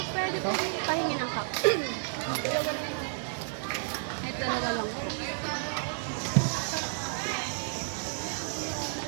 Pwede po pahingi ng cup. Ay, talaga lang.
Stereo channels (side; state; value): left; silent; digital silence